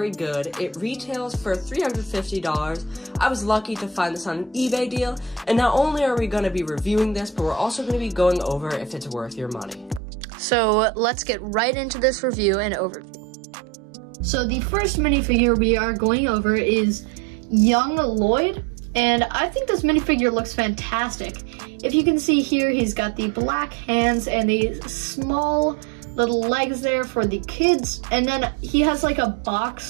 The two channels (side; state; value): left; drops out; at 10.0 s